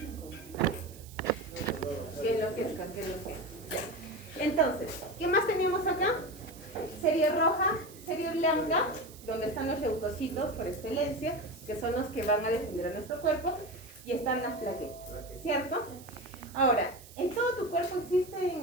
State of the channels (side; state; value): right; noise; hiss, 20 dB below the sound